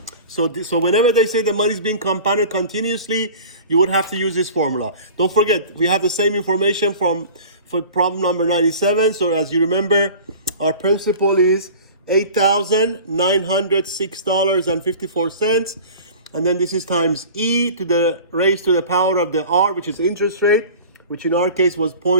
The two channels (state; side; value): inverted; both; correlation -0.41